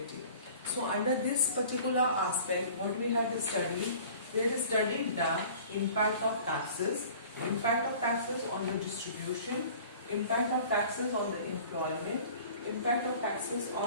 So under this particular aspect, what we have studied, we have studied the impact of taxes on the distribution, impact of taxes on the employment, impact of taxes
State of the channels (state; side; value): inverted; both; correlation -0.46